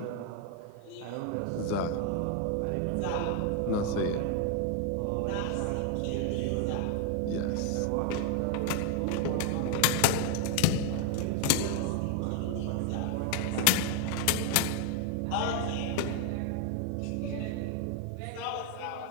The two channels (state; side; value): different; both; correlation 0.01